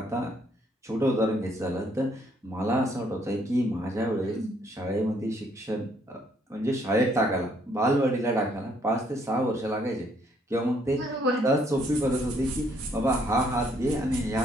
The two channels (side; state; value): both; normal; correlation 0.68